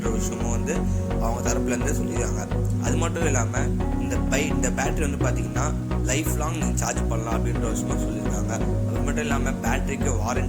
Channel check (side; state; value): both; identical; correlation 1.00